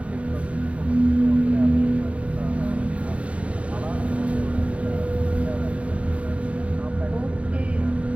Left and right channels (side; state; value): left; late; 0.064 ms